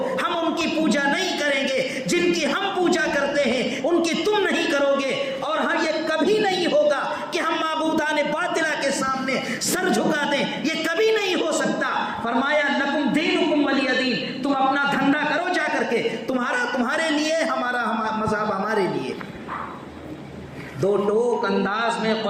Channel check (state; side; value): identical; both; correlation 1.00